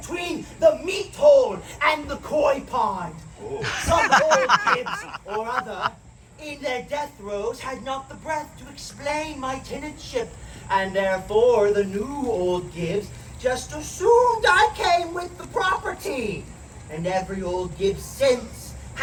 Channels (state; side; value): identical; both; correlation 1.00